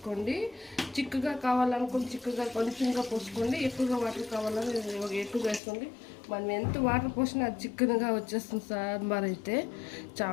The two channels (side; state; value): right; drops out; at 5.6 s